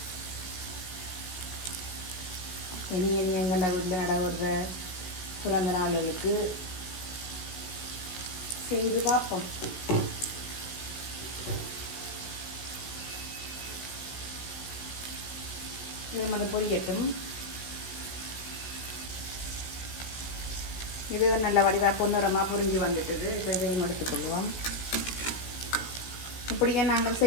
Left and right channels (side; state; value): right; late; 16 ms